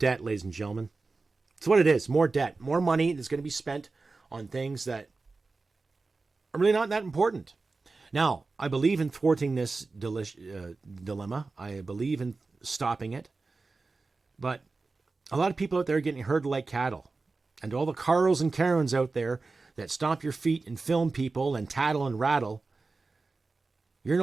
ladies and gentlemen. It's what it is. More debt. More money that's going to be spent on things that are really not that important. Now, I believe in thwarting this dilemma. I believe in stopping it. But a lot of people out there are getting herded like cattle. And all the Carls and Karens out there that stomp your feet and film people and tattle and rattle, you're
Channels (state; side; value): quieter; left; 3.8 dB